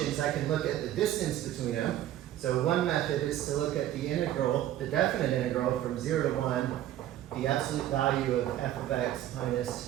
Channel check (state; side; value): quieter; left; 12.7 dB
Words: I can look at the distance between them. So one method is to look at the integral, the definite integral from 0 to 1, the absolute value of f of x